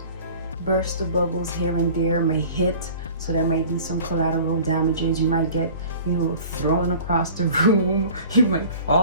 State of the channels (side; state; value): both; inverted; correlation -0.44